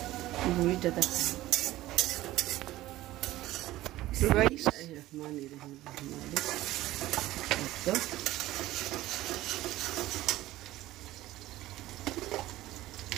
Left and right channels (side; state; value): left; quieter; 16.1 dB